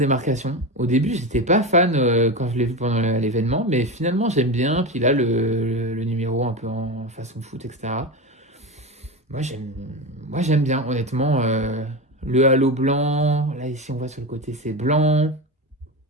Au début, j'étais pas fan quand je l'ai vu pendant l'événement, mais finalement, j'aime bien. Puis là, le numéro un peu en façon foot, etc. Moi, j'aime, moi, j'aime bien, honnêtement. Le halo blanc, là, ici, on voit sur le côté, c'est blanc.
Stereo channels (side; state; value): both; normal; correlation 0.20